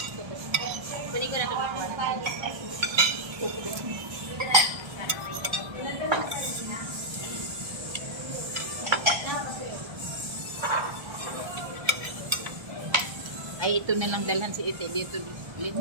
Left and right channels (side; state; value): left; late; 1.3 ms